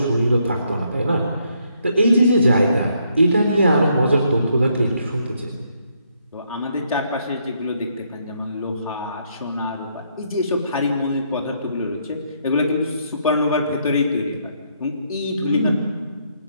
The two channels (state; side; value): inverted; both; correlation -0.73